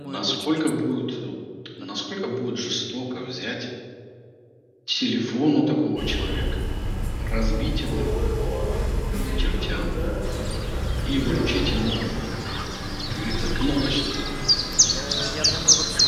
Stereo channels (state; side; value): identical; both; correlation 1.00